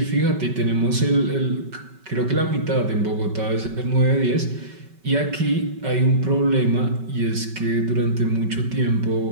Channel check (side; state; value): left; late; 5.3 ms